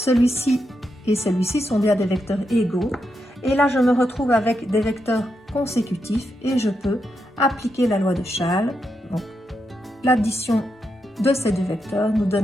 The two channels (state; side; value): normal; both; correlation 0.84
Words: et celui-ci sont bien des vecteurs égaux. Et là je me retrouve avec des vecteurs consécutifs et je peux appliquer la loi de Chasles. Donc l'addition de ces deux vecteurs nous